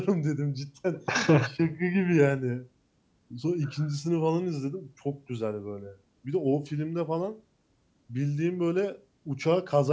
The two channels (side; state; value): both; identical; correlation 1.00